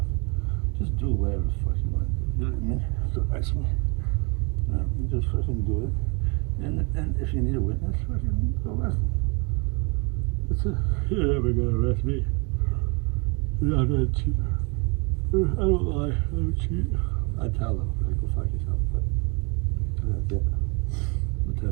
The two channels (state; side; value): quieter; left; 30.5 dB